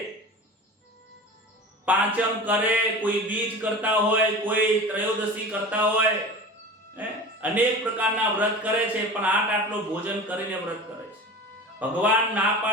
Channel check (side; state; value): both; normal; correlation 0.35